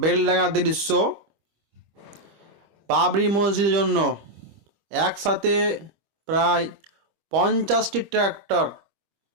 দৃশ্য। বাবরি মসজিদের জন্য একসাথে প্রায় 50টি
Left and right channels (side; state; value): left; late; 25 ms